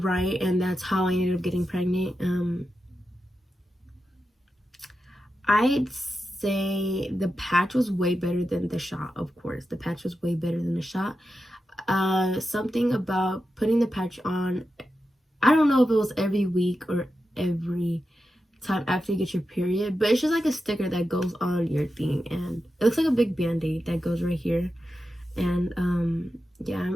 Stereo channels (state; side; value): normal; both; correlation 0.90